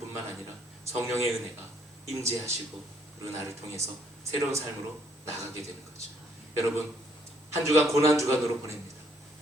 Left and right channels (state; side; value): normal; both; correlation 0.67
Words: 아니라 성령의 은혜가 임재하시고 그리고 나를 통해서 새로운 삶으로 나가게 되는 거죠. 여러분, 한 주간 고난 주간으로 보냅니다.